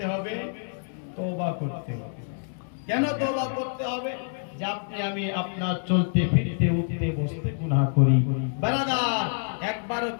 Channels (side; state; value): right; silent; 60 dB below the other